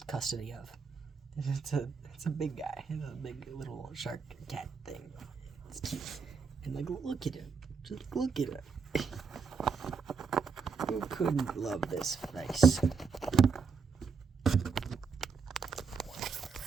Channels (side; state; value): left; quieter; 5.2 dB